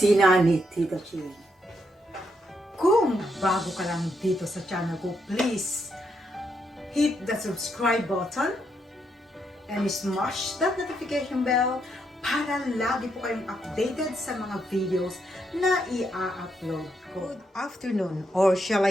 ni Tita Ching. Kung bago ka lang dito sa channel ko, please hit the subscribe button and smash that notification bell para lagi po kayong updated sa mga videos na i-upload ko. Good afternoon, or shall I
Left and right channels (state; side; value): normal; both; correlation 0.79